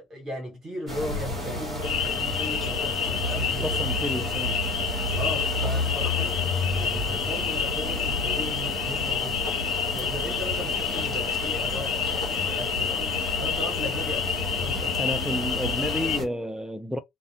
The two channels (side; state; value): right; quieter; 3.6 dB